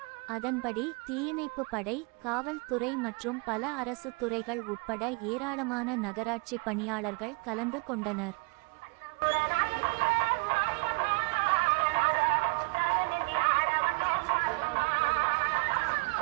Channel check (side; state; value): left; quieter; 29.8 dB